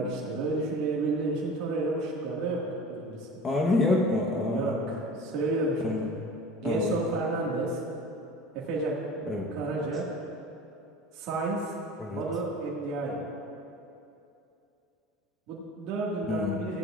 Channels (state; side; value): normal; both; correlation 0.39